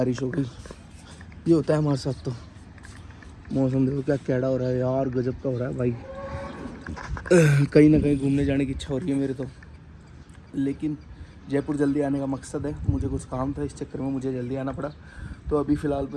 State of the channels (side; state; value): both; identical; correlation 1.00